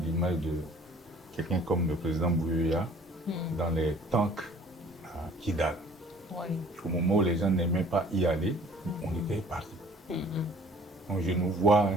l'image de quelqu'un comme le président Bouyoya dans les tanks à Kidal. Oui. Au moment où les gens n'aimaient pas y aller, on était parti. Donc je nous vois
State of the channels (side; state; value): both; normal; correlation 0.53